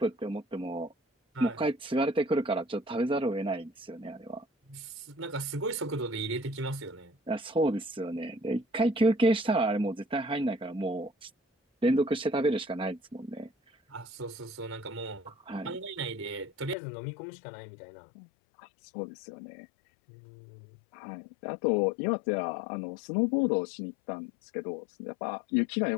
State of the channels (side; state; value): right; drops out; at 16.8 s